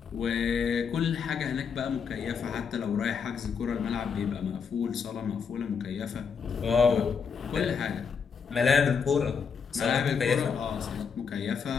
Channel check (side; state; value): right; quieter; 6.2 dB